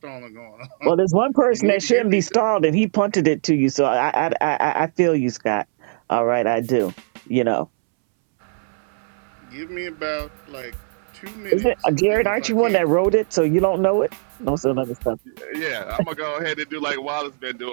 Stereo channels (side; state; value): left; silent; 64 dB below the other